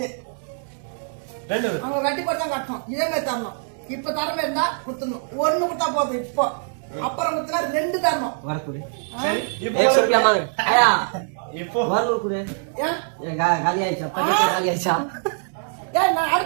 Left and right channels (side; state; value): left; silent; digital silence